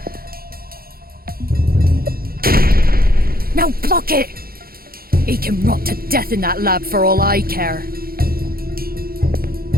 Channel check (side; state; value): left; late; 0.43 ms